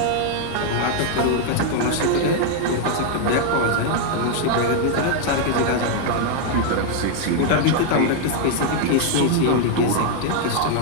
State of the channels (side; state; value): both; different; correlation 0.00